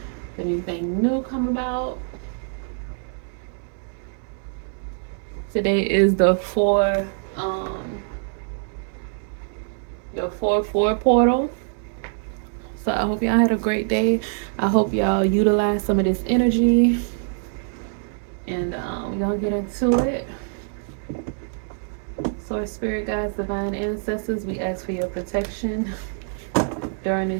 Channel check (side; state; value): left; silent; 62 dB below the other